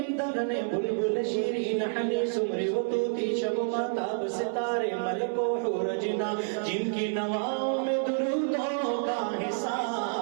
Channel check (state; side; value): silent; left; 59 dB below the other